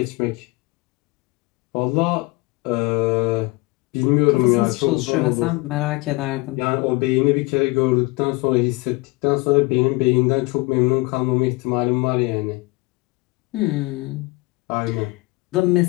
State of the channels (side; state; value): right; quieter; 24.1 dB